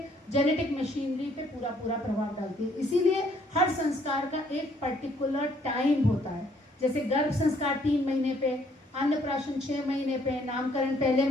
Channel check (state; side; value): normal; both; correlation 0.65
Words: जेनेटिक मशीनरी पे पूरा प्रभाव डालती है। इसीलिए हर संस्कार का एक पर्टिकुलर टाइम होता है। जैसे गर्भ संस्कार 3 महीने पे, अन्नप्राशन 6 महीने पे, नामकरण पहले